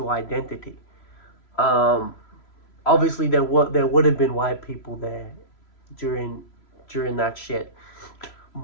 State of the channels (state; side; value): late; right; 3.0 ms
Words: identity. obviously there would have been white people there during that shit,